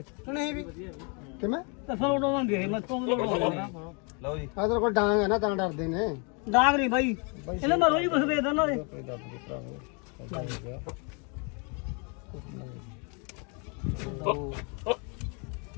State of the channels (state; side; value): quieter; right; 34.9 dB